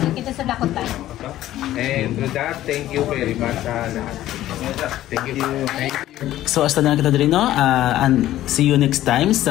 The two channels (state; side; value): quieter; right; 13.9 dB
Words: kita sa dakot tayo. And with that, thank you very much sa lahat. Thank you. So hasta na kita diri, no? And see you next time